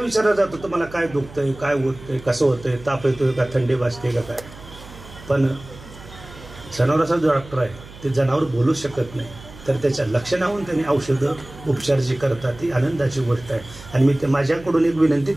जातो तुम्हाला काय दुखतंय, काय होतंय, कसं होतंय, ताप येतोय का, थंडी वाजते का काय. पण जनावराचा जो डॉक्टर आहे ते जनावर बोलू शकत नाही, तर त्याच्या लक्षणाहून त्यांनी औषधं उपचार जे करतात ती आनंदाची गोष्ट आहे. आणि मी माझ्याकडून एक विनंती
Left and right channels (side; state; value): right; noise; hum, 18 dB below the sound